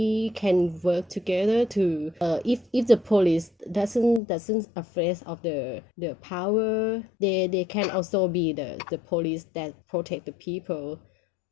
can work together to if the police doesn't afraid of the power, they can also be the police that protect the people.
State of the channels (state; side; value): drops out; right; at 4.2 s